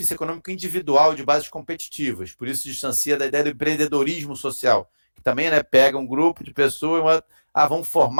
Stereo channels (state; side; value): inverted; both; correlation -1.00